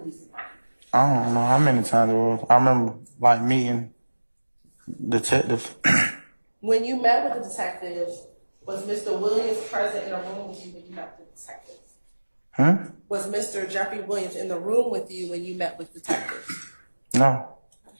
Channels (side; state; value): both; inverted; correlation -1.00